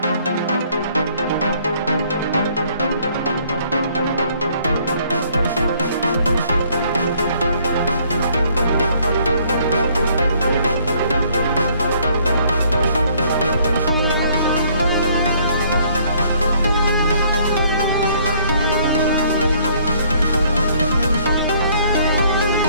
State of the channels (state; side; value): inverted; both; correlation -0.62